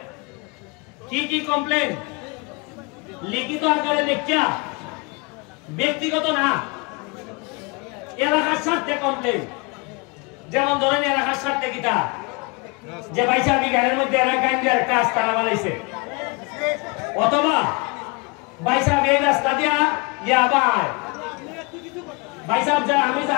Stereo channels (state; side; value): quieter; right; 29.5 dB